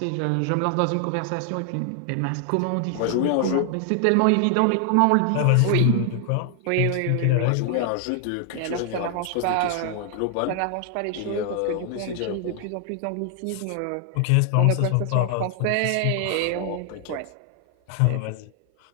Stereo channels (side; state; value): both; different; correlation 0.00